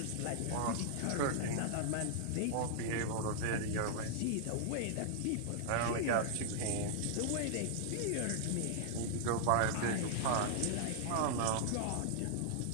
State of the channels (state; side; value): different; both; correlation -0.01